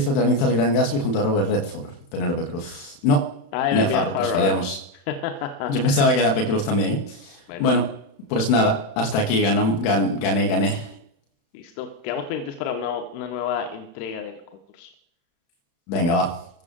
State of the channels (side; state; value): right; late; 36 ms